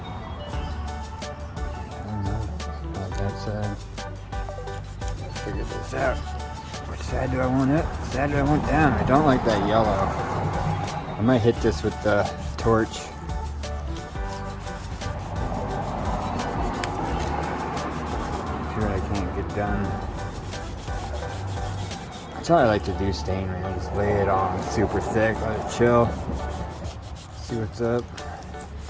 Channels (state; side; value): identical; both; correlation 1.00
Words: I don't know about that side. Let's figure this out. Which side do I want up? Which side do I want down? I don't like that yellow. I might hit this with the torch. See what I can't get done. That's how I like to do stain, right? I just lay it on super thick, let it chill. See what's up.